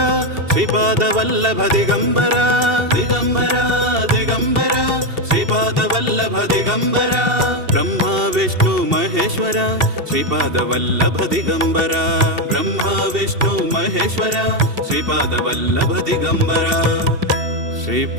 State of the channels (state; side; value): late; left; 2.7 ms